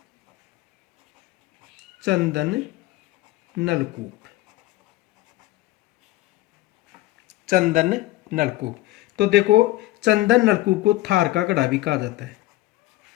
चंदन नलकूप, चंदन नलकूप। तो देखो, चंदन नलकूप को थार का गढ़ा भी कहा जाता है,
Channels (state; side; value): quieter; right; 17.2 dB